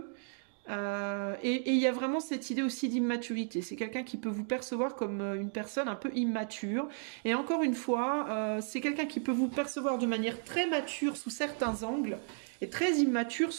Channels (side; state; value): left; silent; 55 dB below the other